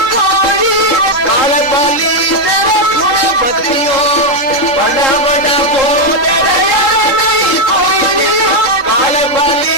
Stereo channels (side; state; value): right; late; 3.8 ms